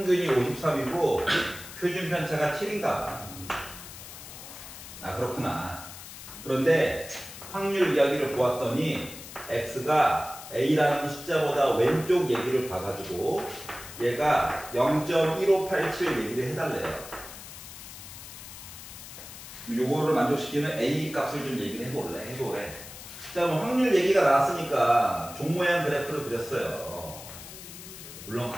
53이고 표준 편차가 7인가. 그렇구나. 그런데 확률 이야기를 보았더니 x가 a라는 숫자보다 왼쪽 얘기를 봐가지고 얘가 0.1587 얘기를 해달래요. 요거를 만족시키는 a 값을 좀 얘기를 해보래. 자, 그럼 확률 얘기가 나왔으니까 종 모양 그래프를 그렸어요. 물론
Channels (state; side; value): noise; left; hiss, 14 dB below the sound